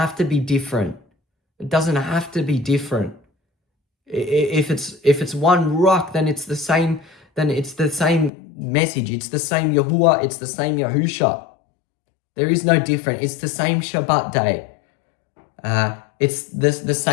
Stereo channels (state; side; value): drops out; right; at 8.3 s